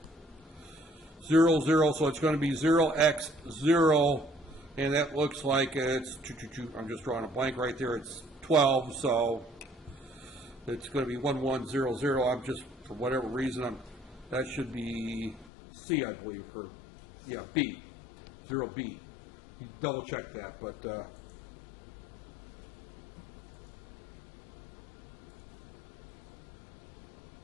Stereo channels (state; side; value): drops out; right; at 15.5 s